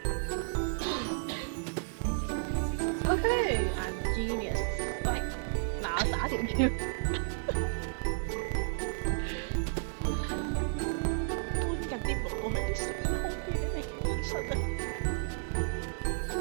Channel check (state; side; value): silent; left; 56 dB below the other